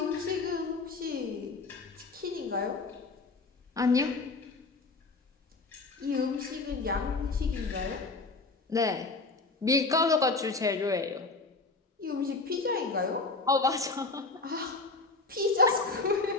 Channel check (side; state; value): right; quieter; 3.7 dB